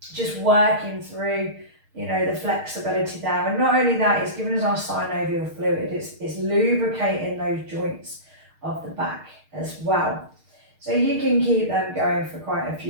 just working through, the flexibility there. And not only that, it's giving us our synovial fluid. It's lubricating those joints of the back as well. So you can keep them going for quite a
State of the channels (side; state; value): left; late; 6.5 ms